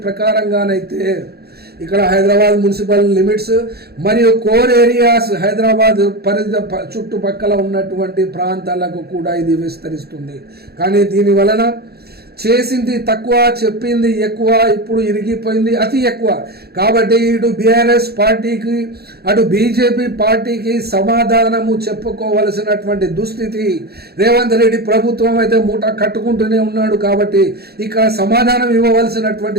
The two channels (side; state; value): left; late; 0.46 ms